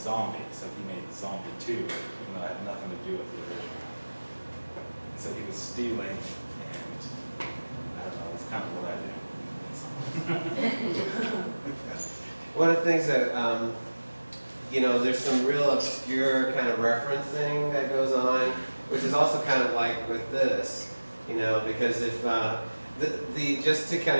so he made Zombie 2, even though it had nothing to do with the original. And so he was stealing, and I don't know, that's kind of what I do. One of the things that, you know, there's some real obscure kind of referencing that goes on, which is also kind of like with this. You know, because if just to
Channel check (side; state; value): both; inverted; correlation -1.00